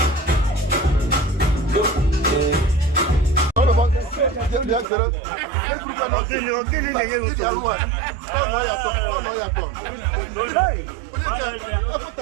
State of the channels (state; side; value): drops out; left; at 4.9 s